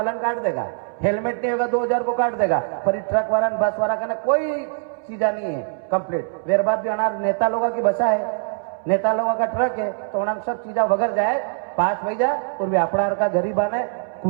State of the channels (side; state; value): left; silent; 64 dB below the other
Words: काट देगा, हेलमेट नहीं होगा 2000 को काट देगा। पर ट्रक वाला बस वाला का कोई चीजा नहीं है कंप्लीट। वेर बाद भी अनार नेता लोगों की बसा है, नेता लोगों का ट्रक है तो उन्हें सब चीजा वगैरह जाए 5 बजे और भी अपना का गरीबा ने